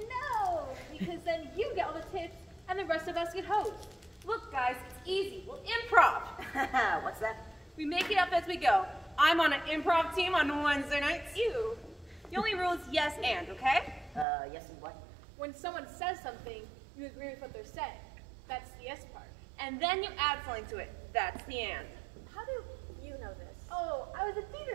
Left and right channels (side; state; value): left; drops out; at 14.2 s